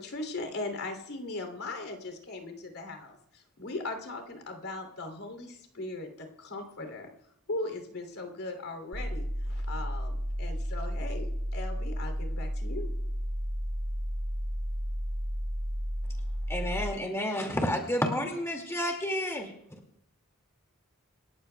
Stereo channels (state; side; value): normal; both; correlation 0.68